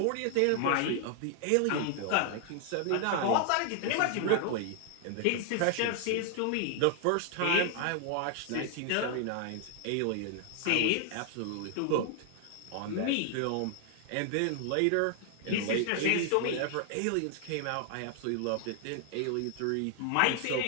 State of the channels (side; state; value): both; different; correlation 0.00